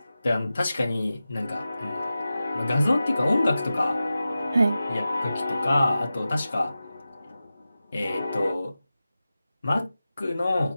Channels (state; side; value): inverted; both; correlation -0.94